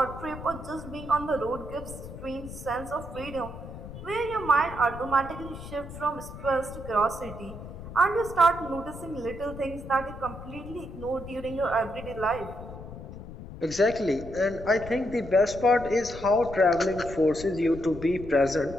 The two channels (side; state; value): left; noise; rumble, 12 dB below the sound